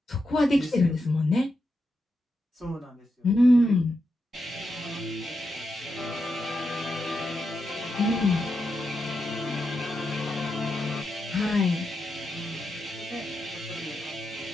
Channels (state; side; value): normal; both; correlation 0.86